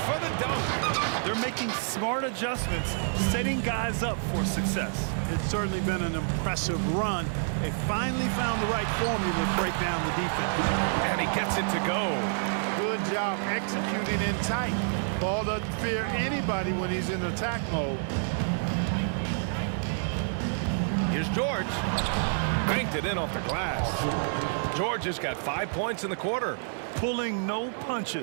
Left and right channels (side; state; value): left; silent; digital silence